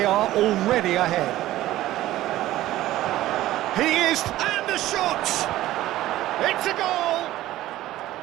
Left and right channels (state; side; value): quieter; left; 15.2 dB